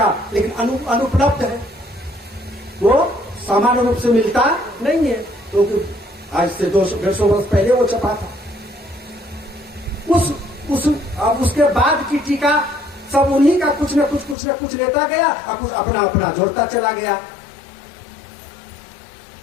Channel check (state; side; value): drops out; right; at 14.4 s